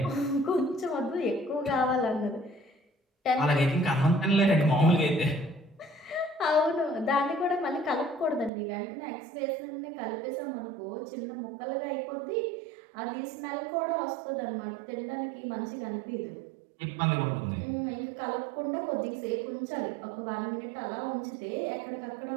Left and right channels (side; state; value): left; drops out; at 8.5 s